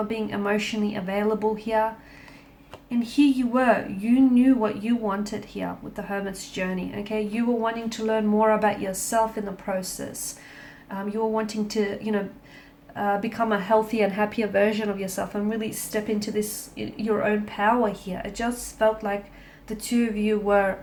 being emotionally available here. And here you were, you knew what you wanted here with the Hermit's journey, okay? You were wanting to learn more about yourself in the process. You were wanting to, become a healthier and happier version of yourself and really step into this, your own power here. It just felt like the two of you were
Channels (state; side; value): identical; both; correlation 1.00